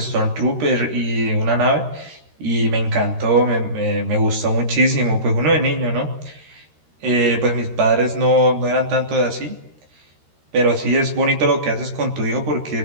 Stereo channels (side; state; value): left; late; 13 ms